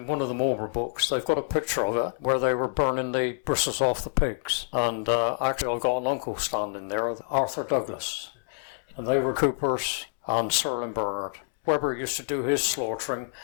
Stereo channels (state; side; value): silent; right; digital silence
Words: one of the Marlborough books, they've got a picture of it where they were burning the bristles off the pigs. And actually, I've got an uncle standing there, Arthur Douglas. And they were Coopers and Sirlin Bernard. Webber used to do his slaughtering